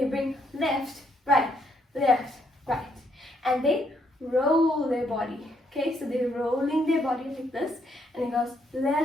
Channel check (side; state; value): both; normal; correlation 0.73